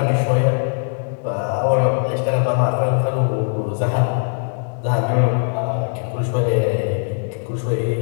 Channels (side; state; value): right; silent; digital silence